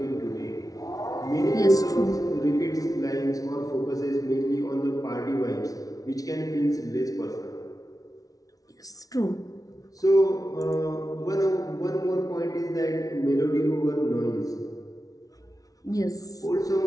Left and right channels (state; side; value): late; right; 0.18 ms